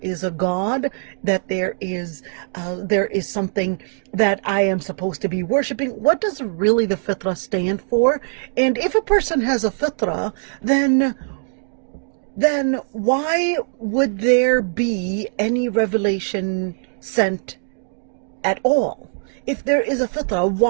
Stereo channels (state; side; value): silent; left; digital silence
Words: a God, that there is something that I am supposed to be worshiping? What does really the fitrah stand for? And if a person has a fitrah, then then why would there be any revelation sent at all? If there is a fitrah,